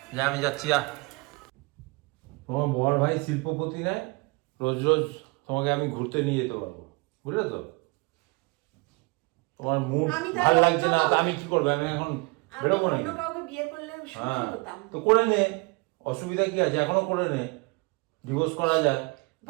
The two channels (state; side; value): quieter; left; 27.6 dB